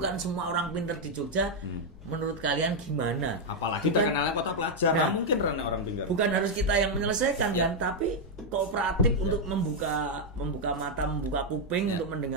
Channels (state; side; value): normal; both; correlation 0.00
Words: semua orang pintar di Jogja. Menurut kalian gimana? Apalagi terkenalnya kota pelajar, mungkin karena orang pintar. Bukan harus kita yang menyelesaikan kan, tapi kooperatif untuk membuka mata, membuka kuping untuk